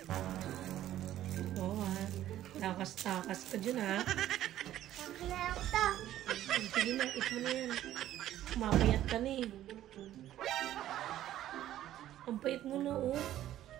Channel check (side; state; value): left; quieter; 12.9 dB